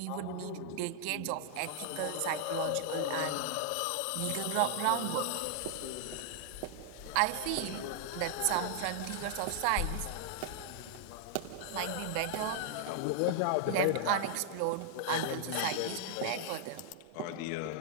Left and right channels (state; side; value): different; both; correlation -0.01